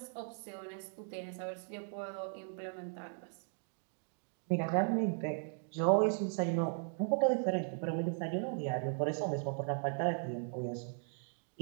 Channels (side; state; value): left; silent; 53 dB below the other